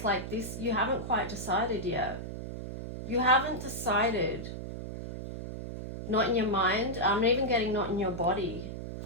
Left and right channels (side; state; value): right; noise; hum, 8 dB below the sound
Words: like this, you haven't quite decided yet. You haven't decided. Not in your mind. I'm even getting not in your body.